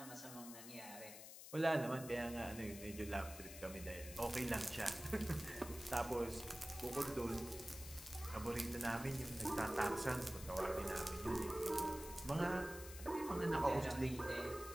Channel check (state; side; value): noise; left; hiss, 12 dB below the sound